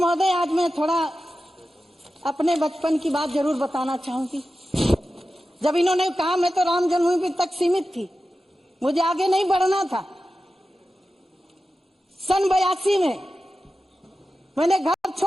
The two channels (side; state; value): both; normal; correlation 0.93